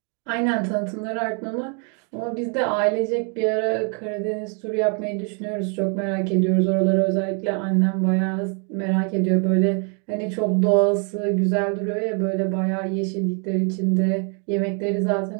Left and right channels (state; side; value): quieter; left; 39.4 dB